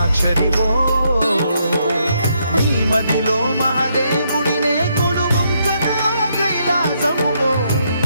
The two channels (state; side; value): inverted; both; correlation -0.75